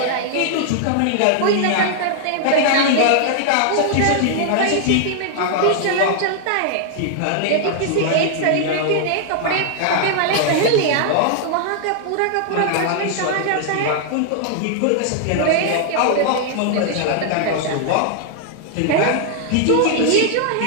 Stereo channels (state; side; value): different; both; correlation 0.00